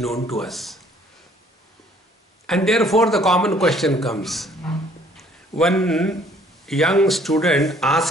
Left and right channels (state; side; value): normal; both; correlation 0.60